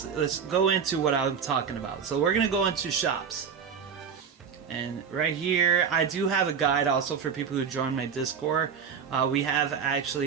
go into what I'm talking about. So we're going to go into shops. And right here, I do have a guide also for people who join my Discord. We have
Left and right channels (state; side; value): quieter; left; 6.8 dB